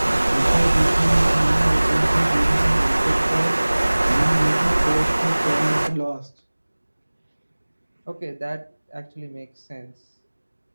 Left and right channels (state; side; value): inverted; both; correlation -1.00